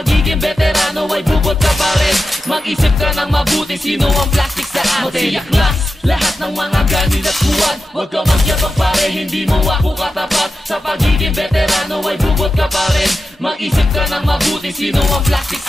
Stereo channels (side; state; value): both; normal; correlation 0.91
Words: veterano ay bubot ka pa rin, mag-isip ka ng mabuti, sino ang plastic sa atin. Magsiyaklas, lahat ng mga ganin at huwad, huwag ka magyabang pare, hindi mo ako katapat. Sa pagiging veterano ay bubot ka pa rin, mag-isip ka ng mabuti, sino ang plastic